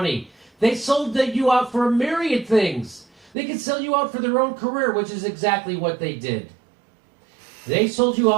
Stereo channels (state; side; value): drops out; left; at 3.3 s